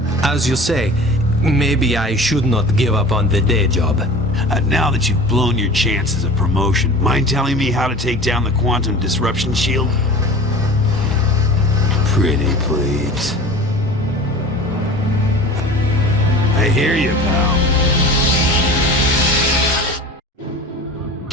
As you say, maybe I should not give up on the day job. Now that you've blown your chances of promotion, mind telling me how to take down the quantum disruption shield? Pretty please. I hear you, pal.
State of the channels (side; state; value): both; normal; correlation 0.39